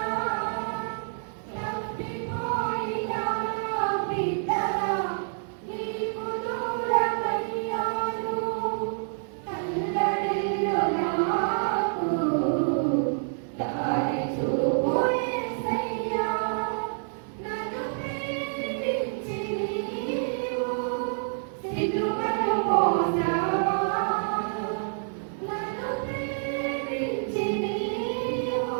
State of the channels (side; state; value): left; silent; digital silence